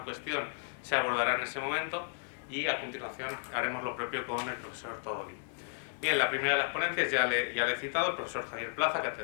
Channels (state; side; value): silent; right; digital silence